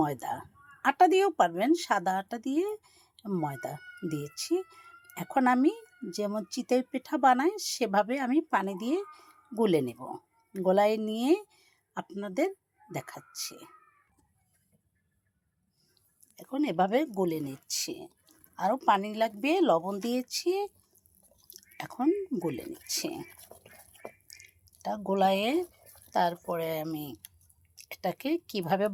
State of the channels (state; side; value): identical; both; correlation 1.00